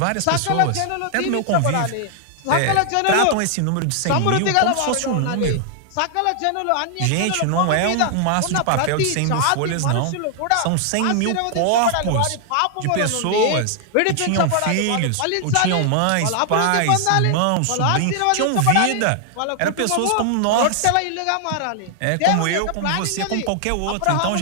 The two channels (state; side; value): different; both; correlation 0.00